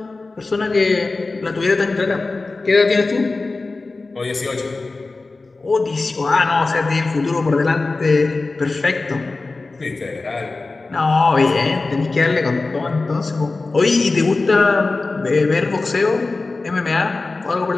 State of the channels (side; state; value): right; quieter; 3.6 dB